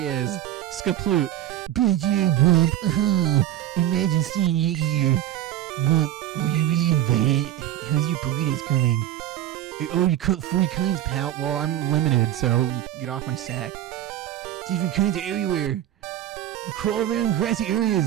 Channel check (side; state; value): left; quieter; 12.7 dB